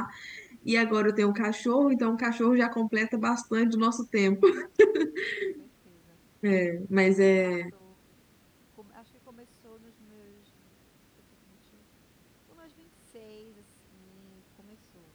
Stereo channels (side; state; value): both; identical; correlation 1.00